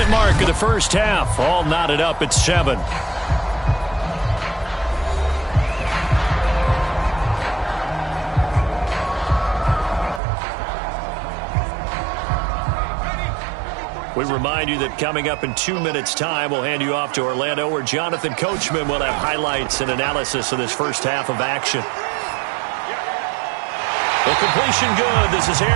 mark of the first half. All knotted up at 7. We remind you that coming up in 2 minutes' time, we'll hand you off to Orlando, where Jonathan Coachman will have highlights and analysis of this first half of action. The completion good. This is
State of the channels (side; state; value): left; drops out; at 10.2 s